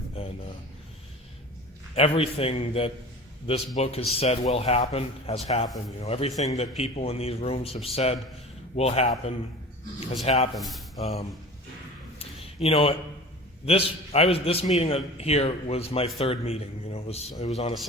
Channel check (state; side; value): normal; both; correlation 0.38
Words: And everything that this book has said will happen has happened. Everything that people in these rooms have said will happen has happened. This meeting here was my third meeting. It was on a